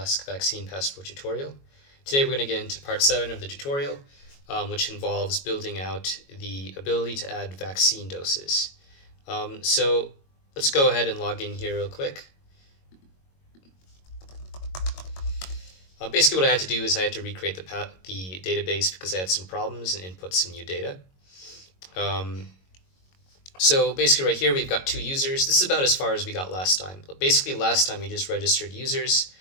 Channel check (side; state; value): right; late; 22 ms